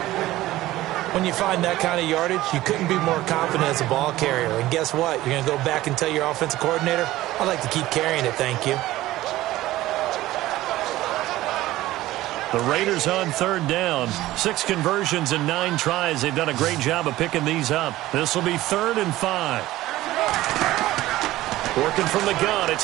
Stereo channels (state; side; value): quieter; left; 16.2 dB